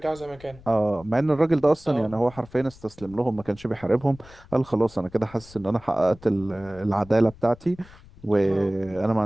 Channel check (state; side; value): noise; left; rumble, 22 dB below the sound